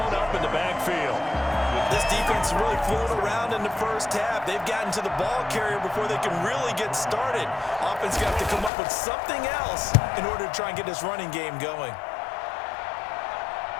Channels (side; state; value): right; drops out; at 8.7 s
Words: up in the backfield. This defense really floated around in the first half. They've gotten to the ball carrier before they can really get started. Offense got to come up with something else in order to try and get this running game going.